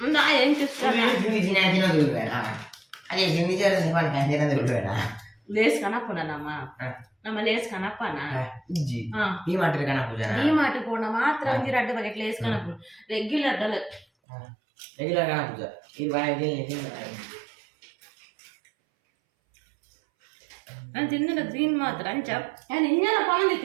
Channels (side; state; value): left; drops out; at 14.1 s